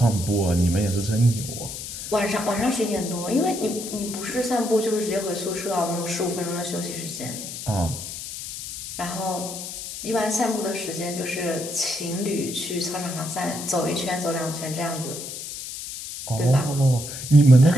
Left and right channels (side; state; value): left; noise; hiss, 8 dB below the sound